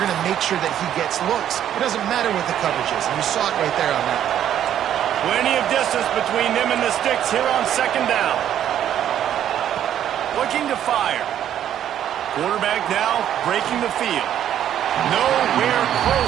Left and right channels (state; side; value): quieter; left; 10.5 dB